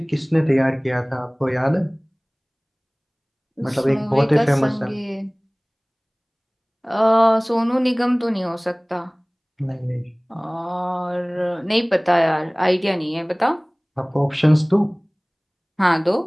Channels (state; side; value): identical; both; correlation 1.00